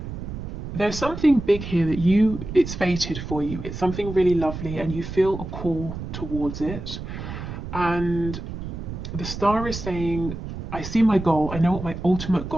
there's something big here that it's fated for you. It's something really lovely and you feel a call towards it. And the star is saying, I see my goal, I know what my ultimate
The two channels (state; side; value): noise; right; rumble, 8 dB below the sound